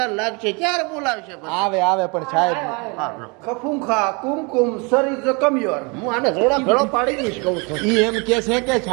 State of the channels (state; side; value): quieter; left; 30.6 dB